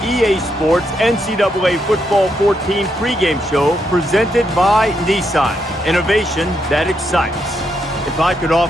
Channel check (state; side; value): normal; both; correlation 0.79